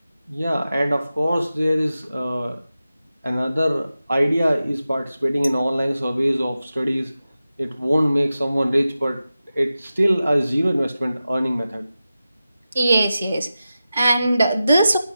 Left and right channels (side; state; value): both; inverted; correlation -0.93